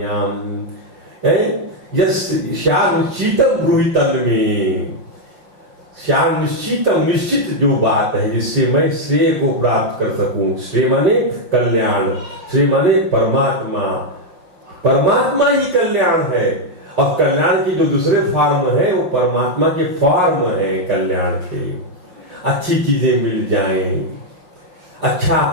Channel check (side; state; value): left; late; 5.8 ms